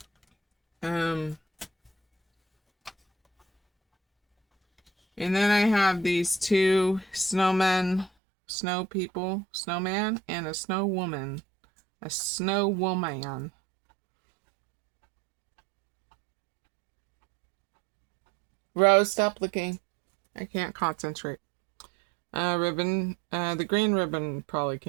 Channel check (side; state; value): left; drops out; at 8.1 s